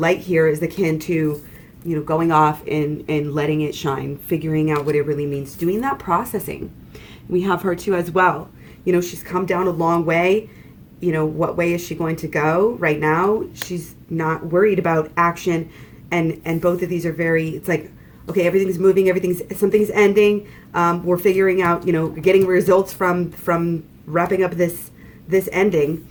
here is akin to going off and letting it shine, figuring out what it really means, doing that processing. We have her too as well. She's come down a long way. What way is she going to go right now? She's not worried about action. And both of these are it's like, okay, everything's moving, something's ending. We're figuring out, getting results from wrapping up this ending.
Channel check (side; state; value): both; identical; correlation 1.00